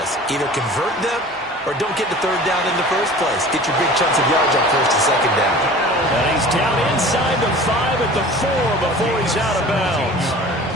Either convert them or don't get the 3rd down in the first place. Get your big chunks of yards on 1st and 2nd down. And he's down inside the 5 at the 4 before he's out of bounds.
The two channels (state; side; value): normal; both; correlation 0.42